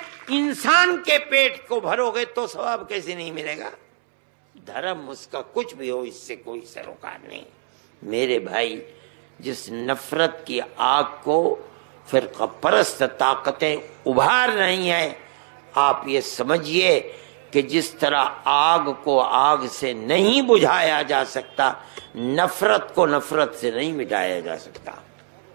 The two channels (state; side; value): silent; left; 64 dB below the other